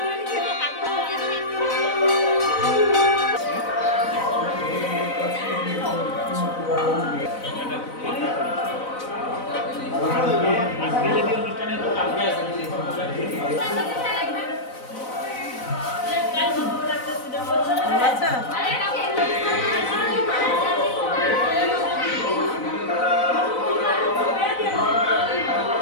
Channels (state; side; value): late; right; 4.0 ms